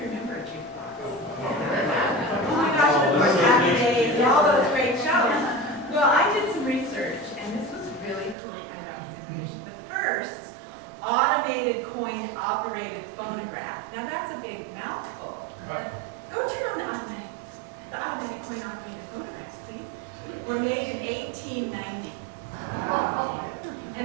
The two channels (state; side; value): drops out; left; at 8.3 s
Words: remember a jukebox? Oh my gosh, and of course, Happy Days and all those great shows. Well, I did some research, and this was really cool. I got this information. The first automated coin-operated phonograph. Now, that's a big mouthful. Go turn on the automatic coin-operated phonographs, please. Were made in 1890.